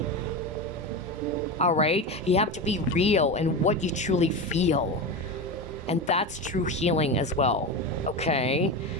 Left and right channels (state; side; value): normal; both; correlation 0.21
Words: All right? You have to be real in what you truly feel. And that's true healing as well, okay?